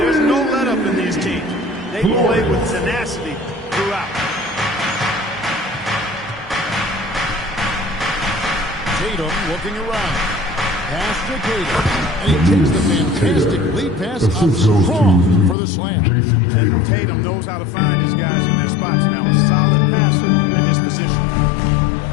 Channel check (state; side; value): drops out; right; at 15.6 s